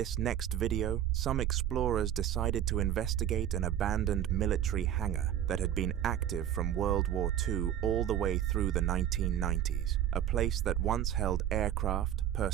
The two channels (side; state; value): left; quieter; 10.8 dB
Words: next video, some explorers decided to investigate an abandoned military hangar that had been active from World War II all the way through the 1990s, a place that once held aircraft,